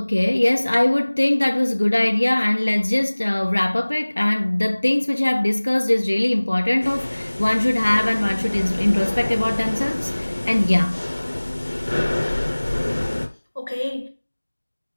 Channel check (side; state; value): both; inverted; correlation -1.00